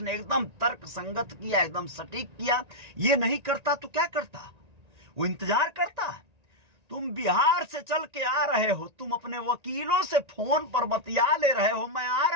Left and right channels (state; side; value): late; left; 1.9 ms